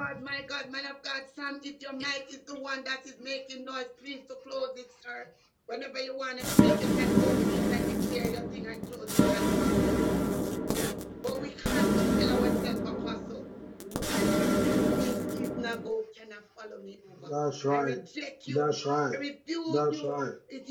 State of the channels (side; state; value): both; identical; correlation 1.00